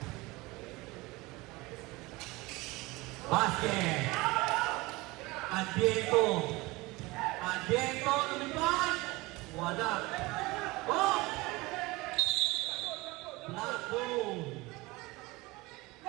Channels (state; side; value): quieter; left; 22.2 dB